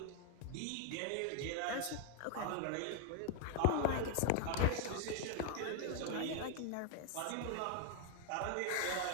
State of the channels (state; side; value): different; both; correlation 0.00